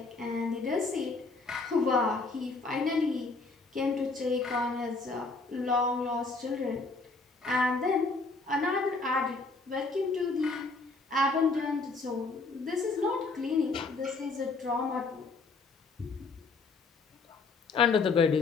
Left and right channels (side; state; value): right; quieter; 3.9 dB